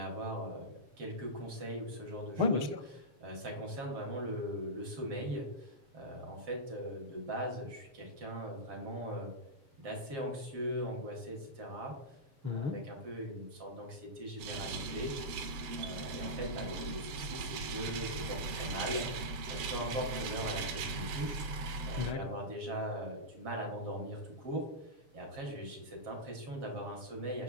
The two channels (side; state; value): left; late; 7.8 ms